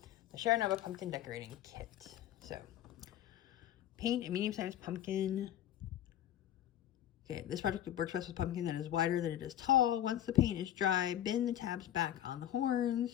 The Chernobyl pumpkin decorating kit. So, paint a medium-sized pumpkin. Okay, this project works best with pumpkin that is wider than it is tall. Once the paint is dry, bend the tabs back on the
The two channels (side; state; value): right; quieter; 11.6 dB